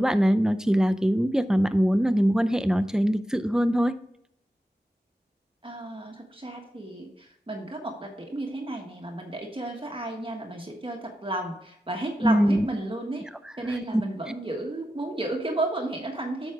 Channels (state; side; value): normal; both; correlation 0.91